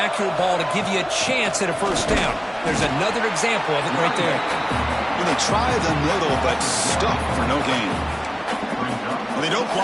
ball to give you a chance at a first down. There's another example of it right there. When they try the middle, but stuck for no gain. They don't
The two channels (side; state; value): both; identical; correlation 1.00